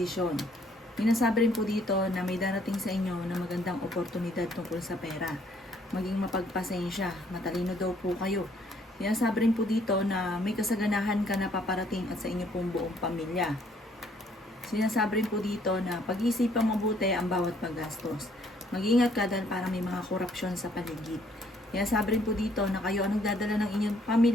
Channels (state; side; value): normal; both; correlation 0.65